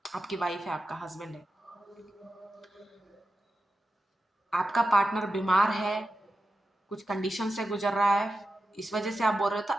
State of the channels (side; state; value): both; normal; correlation 0.90